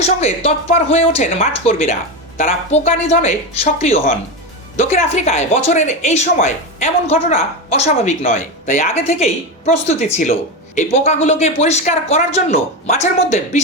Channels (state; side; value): normal; both; correlation 0.16